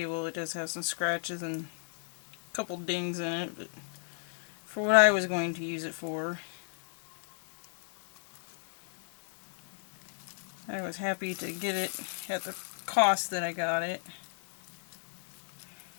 It does have some scratches and a couple dings in it, but for what I was going to use it for, I was happy to get it at the cost that I got it.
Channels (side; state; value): right; silent; 56 dB below the other